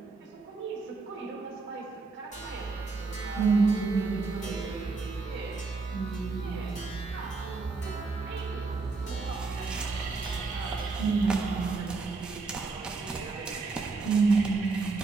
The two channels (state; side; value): quieter; left; 4.1 dB